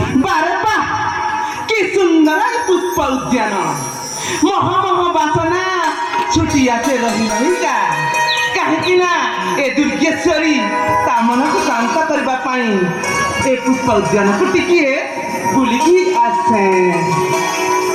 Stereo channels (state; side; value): identical; both; correlation 1.00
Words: बारे बा कि सुंदर पुष्प उद्यान मह मह बासना छुटिया से रही रहीका कहीं ए दुर्गेश्वरी ता मन को शांत करने ए पुष्प उद्यान को टिके बुलिकी आसे